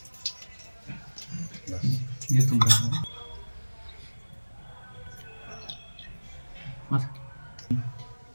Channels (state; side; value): inverted; both; correlation -1.00